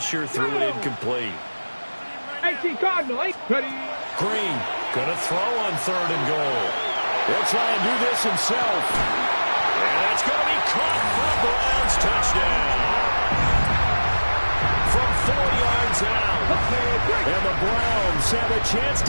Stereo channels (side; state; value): both; inverted; correlation -1.00